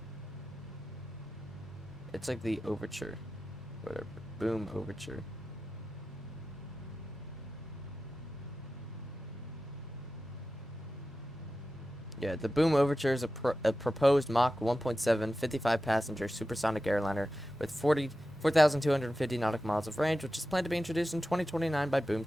it's like the Overture. Whatever. Boom Overture. Yeah, the Boom Overture is a proposed Mach 1.7 55-passenger supersonic airliner with 4,250 nautical miles of range, which is planned to be introduced in 2029 by Boom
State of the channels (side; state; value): both; normal; correlation 0.93